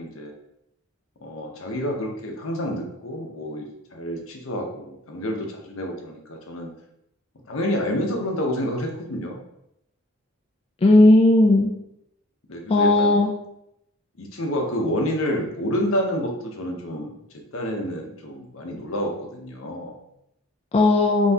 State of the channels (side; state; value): both; normal; correlation 0.55